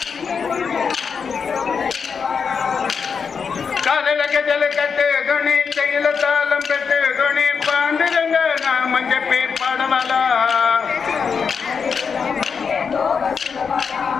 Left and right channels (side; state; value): right; quieter; 6.0 dB